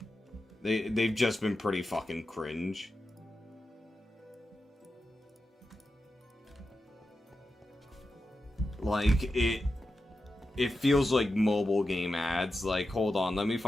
They've just been pretty fucking cringe. Like, it feels like mobile game ads. Like, hold on, let me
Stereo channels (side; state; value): both; normal; correlation 0.90